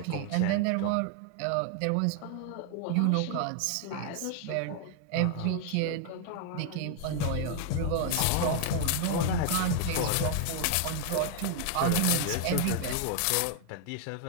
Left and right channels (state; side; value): different; both; correlation 0.00